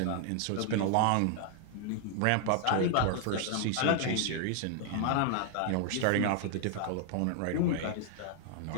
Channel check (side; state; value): both; different; correlation 0.00